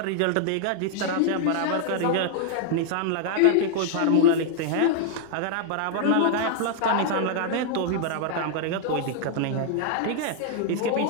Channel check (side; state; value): both; different; correlation -0.01